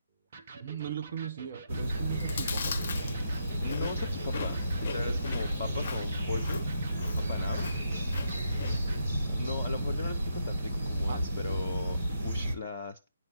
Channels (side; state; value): both; inverted; correlation -0.79